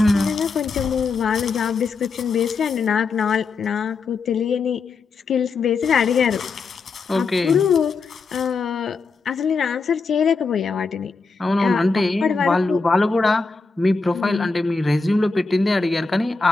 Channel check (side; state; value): right; quieter; 4.4 dB